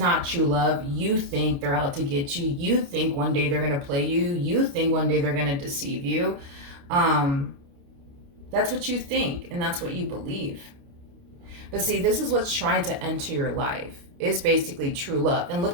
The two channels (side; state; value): left; late; 29 ms